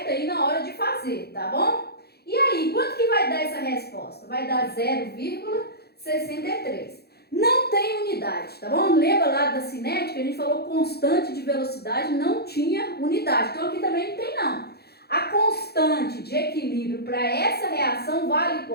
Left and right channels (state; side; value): late; right; 0.46 ms